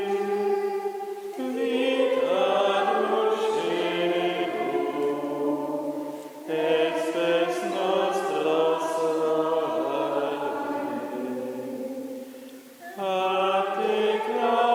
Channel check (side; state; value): both; identical; correlation 1.00